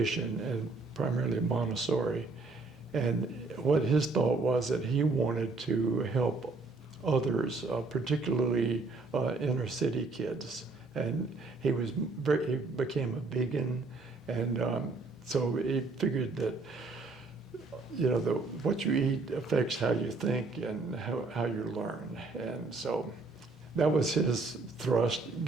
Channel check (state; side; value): quieter; left; 3.7 dB